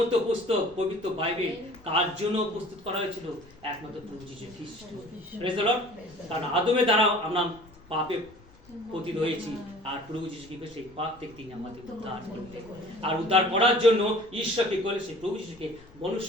পুস্তক পবিত্র বাইবেল কার জন্য প্রস্তুত করা হয়েছিল? একমাত্র প্রভু যীশু খ্রিস্ট। Praise the Lord. কারণ আদমের দ্বারা আমরা পাপে পতিত হয়েছি, আর প্রভু যীশু খ্রিস্ট সেই পাপ থেকে তিনি আমাদের উদ্ধার করলেন। আর উদ্ধার করার জন্য ঈশ্বরকে বলে সেই প্রভু যীশুকে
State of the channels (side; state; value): left; noise; rumble, 25 dB below the sound